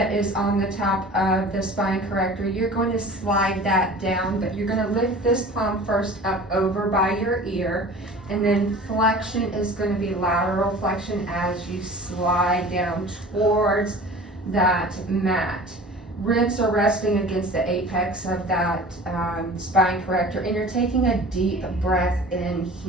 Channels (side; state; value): both; normal; correlation 0.41